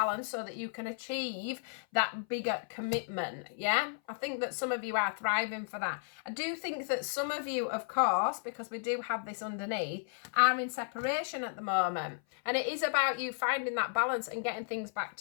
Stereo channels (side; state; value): right; silent; 55 dB below the other